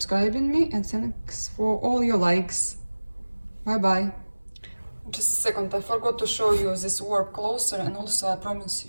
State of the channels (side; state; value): both; inverted; correlation -1.00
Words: me, and thanks for all your likes. Bye bye. Just a second, I forgot to show you this work closer, and also I promise